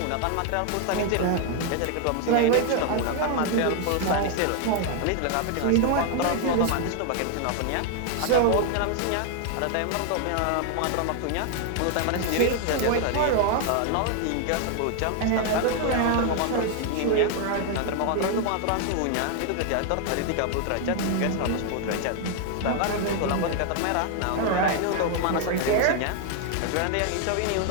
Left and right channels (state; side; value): different; both; correlation 0.00